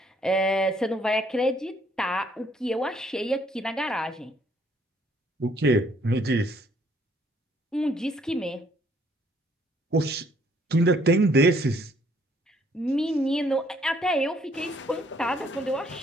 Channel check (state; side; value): normal; both; correlation 0.65